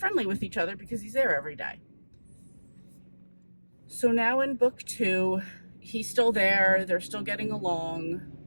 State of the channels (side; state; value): both; inverted; correlation -1.00